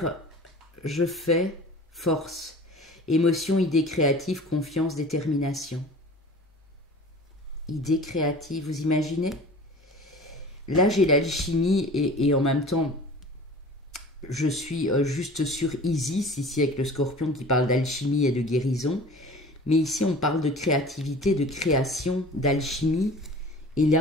je fais, force, émotion, idée créative, confiance, détermination. Idée créative, vous imaginez? Là, j'ai l'alchimie et en même temps, je suis juste sur Isis, ici avec le Scorpion qui parle d'alchimie et de guérison. Mais ici, on parle de créativité, de création, d'alchimie. Et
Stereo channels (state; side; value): normal; both; correlation 0.41